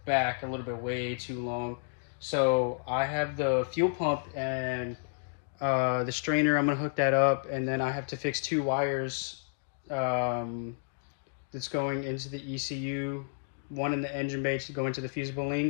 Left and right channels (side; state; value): right; silent; digital silence